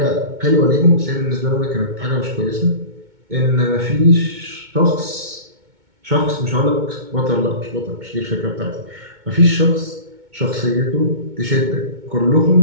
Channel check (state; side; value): late; left; 2.2 ms